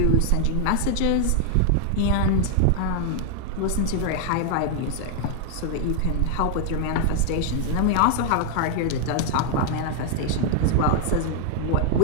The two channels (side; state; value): both; different; correlation 0.00